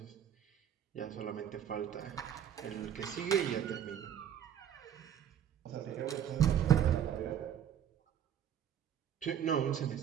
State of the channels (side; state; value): left; quieter; 9.3 dB